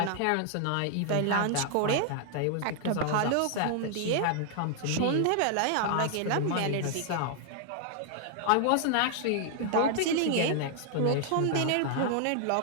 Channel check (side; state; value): both; different; correlation 0.00